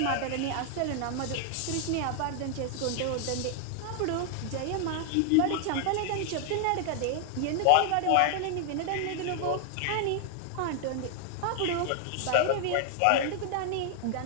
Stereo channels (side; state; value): both; different; correlation 0.00